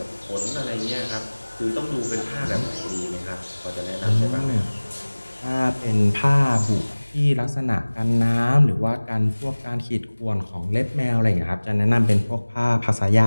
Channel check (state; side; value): inverted; both; correlation -1.00